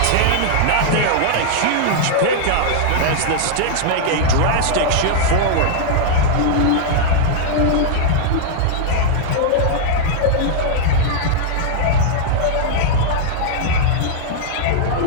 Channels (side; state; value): both; different; correlation -0.01